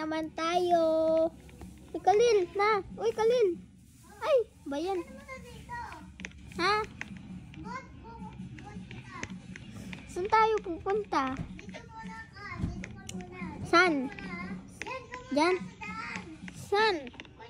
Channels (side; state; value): both; identical; correlation 1.00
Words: tayo. Uy, Kalil, na. Uy, Kalil. Ay, ba yan? Ha? Saan tayo pupunta? San? Diyan? San?